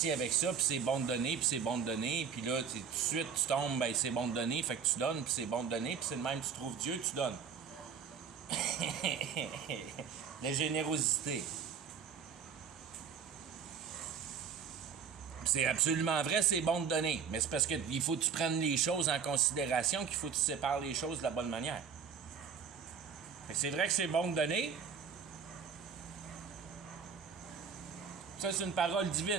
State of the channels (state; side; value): quieter; left; 6.6 dB